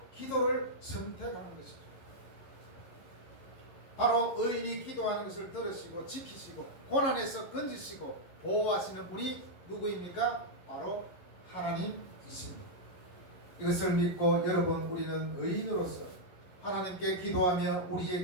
기도를 선택하는 것이죠. 바로 의인이 기도하는 것을 들으시고 지키시고 고난에서 건지시고 보호하시는 분이 누구입니까? 바로 하나님이십니다. 이것을 믿고 여러분 우리는 의인으로서 하나님께 기도하며 우리의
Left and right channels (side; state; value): right; late; 11 ms